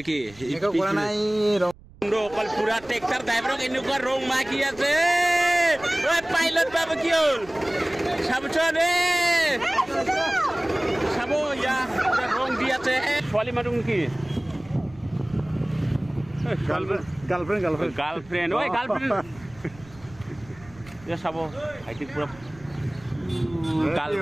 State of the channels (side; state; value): right; noise; rumble, 22 dB below the sound